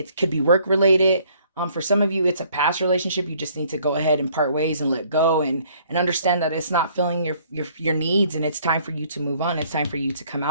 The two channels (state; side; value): inverted; both; correlation -0.61